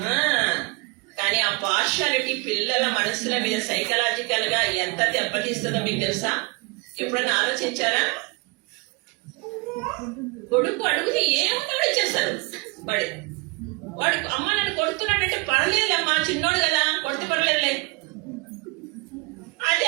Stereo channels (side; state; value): left; quieter; 28.5 dB